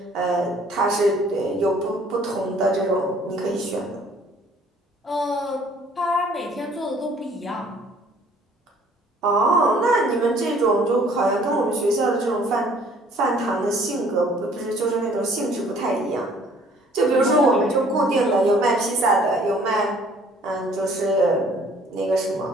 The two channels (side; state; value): both; normal; correlation 0.57